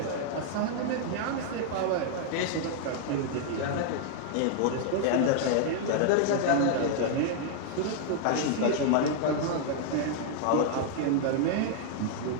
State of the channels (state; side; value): different; both; correlation -0.01